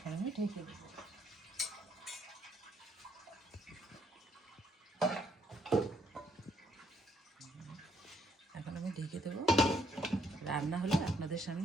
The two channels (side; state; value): both; normal; correlation 0.70